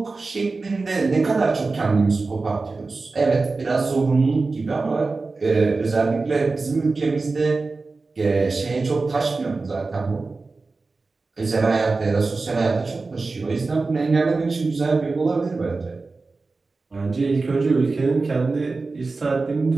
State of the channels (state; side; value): quieter; left; 3.8 dB